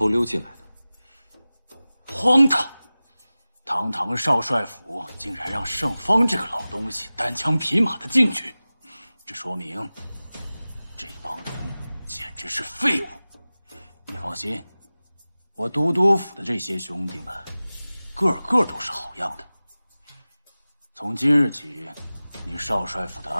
溜进来的。荒唐！堂堂少帅府竟然让盛方这个老东西单枪匹马的进去，这说明这帮人简直是废物。你放心，我都督府的这些兄弟们，个个都是好样的。从今日起，你少帅府的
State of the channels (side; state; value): both; inverted; correlation -0.97